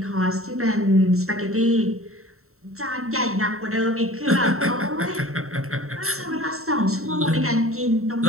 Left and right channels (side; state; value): left; late; 0.63 ms